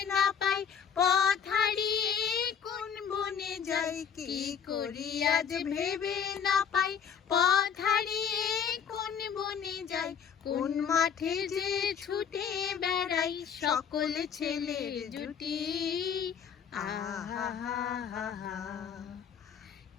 না পাই, পথ হারিয়ে কোন বনে যাই। কি করি আজ ভেবে না পাই, পথ হারিয়ে কোন বনে যাই। কোন মাঠে যে ছুটে বেড়াই, সকল ছেলের জুটি। আহা হা হা হা,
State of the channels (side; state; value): right; quieter; 7.5 dB